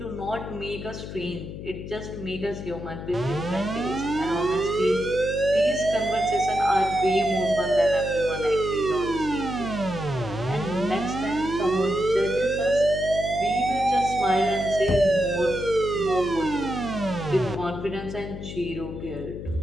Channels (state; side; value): noise; left; hum, 9 dB below the sound